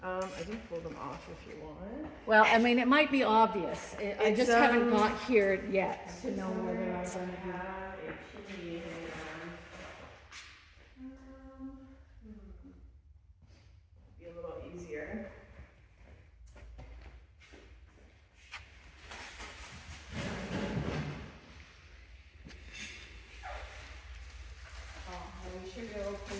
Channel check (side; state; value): both; identical; correlation 1.00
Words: I can pull them off if you want. Well, I mean, it might be obvious. I It's, just haven't got here yet to know whether I'm gonna do. Have a chimney be a little easier. We should go pull